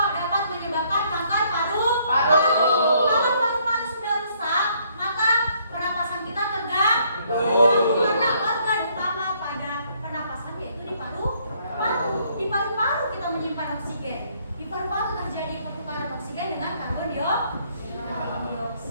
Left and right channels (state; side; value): inverted; both; correlation -0.67